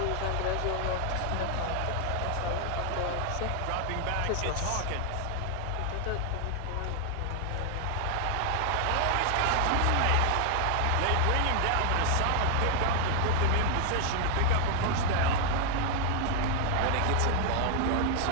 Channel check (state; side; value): different; both; correlation 0.00